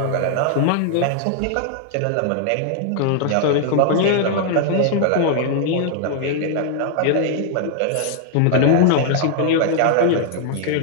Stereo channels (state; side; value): different; both; correlation 0.00